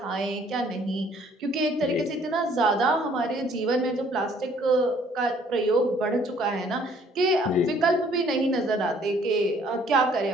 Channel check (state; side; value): normal; both; correlation 0.60